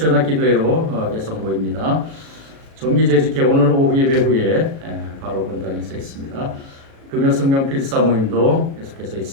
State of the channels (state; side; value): late; left; 37 ms